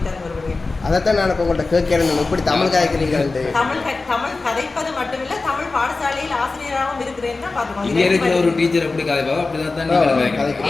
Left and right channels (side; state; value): right; quieter; 3.7 dB